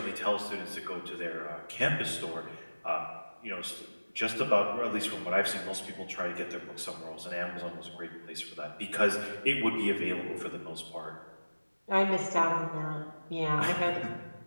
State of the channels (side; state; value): both; inverted; correlation -1.00